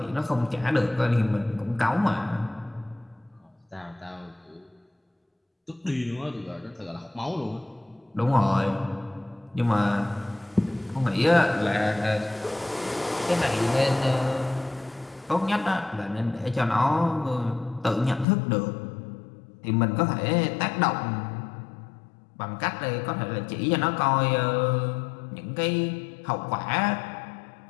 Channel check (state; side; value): drops out; right; at 18.2 s